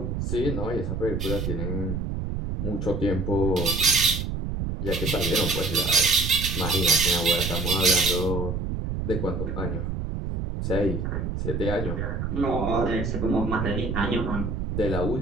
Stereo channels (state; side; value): noise; right; rumble, 3 dB below the sound